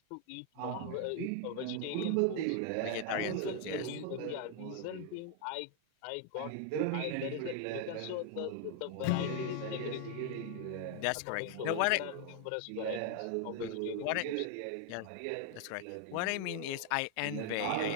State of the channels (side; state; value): both; different; correlation 0.00